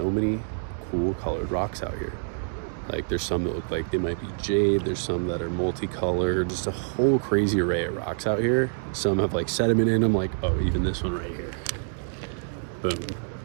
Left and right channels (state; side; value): silent; left; 60 dB below the other